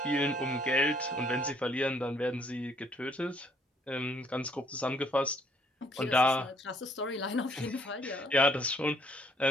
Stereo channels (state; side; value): normal; both; correlation 0.64